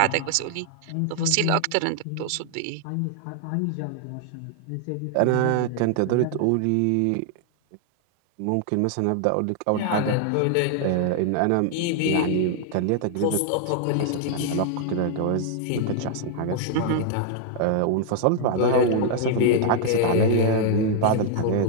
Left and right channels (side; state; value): both; different; correlation 0.00